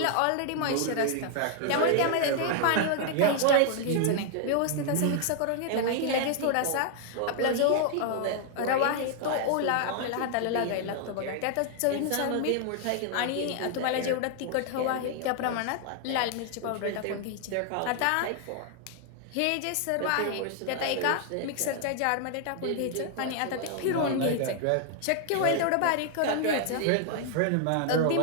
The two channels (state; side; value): different; both; correlation 0.00